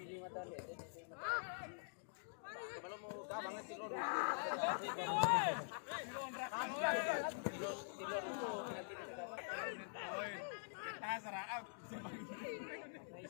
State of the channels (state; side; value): silent; right; digital silence